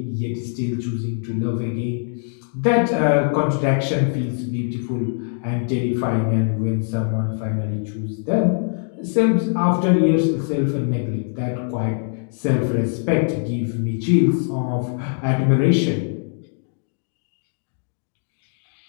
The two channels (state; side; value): silent; right; digital silence